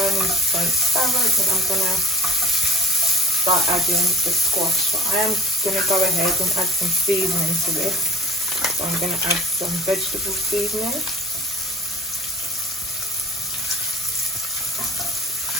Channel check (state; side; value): normal; both; correlation 0.43